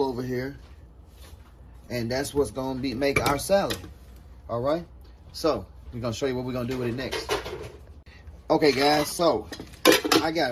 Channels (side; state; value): both; identical; correlation 1.00